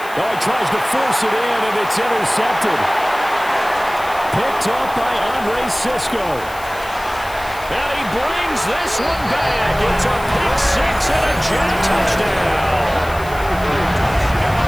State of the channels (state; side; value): noise; left; hiss, 18 dB below the sound